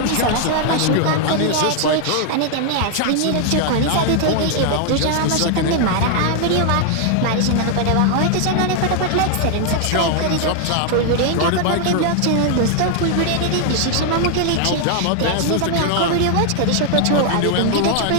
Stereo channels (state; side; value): different; both; correlation 0.00